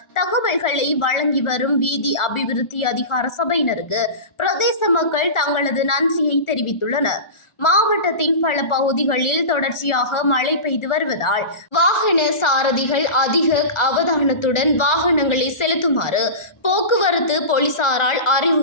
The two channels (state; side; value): late; right; 1.4 ms